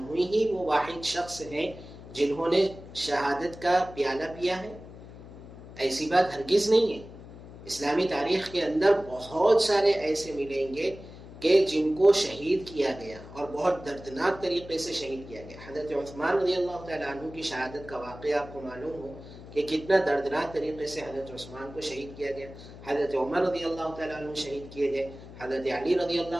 ہی وہ واحد شخص ہیں جنہوں نے شہادت کا پیالہ پیا ہے؟ ایسی بات ہرگز نہیں ہے. اسلامی تاریخ کے اندر بہت سارے ایسے ملیں گے کہ جن کو شہید کیا گیا اور بہت دردناک طریقے سے شہید کیا گیا. حضرت عثمان رضی اللہ تعالیٰ عنہ کی شہادت کا واقعہ آپ کو معلوم ہو کہ کتنا دردناک طریقے سے حضرت عثمان کو شہید کیا گیا. حضرت عمر رضی اللہ تعالیٰ عنہ شہید کیے گئے. حضرت علی رضی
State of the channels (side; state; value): left; noise; hum, 16 dB below the sound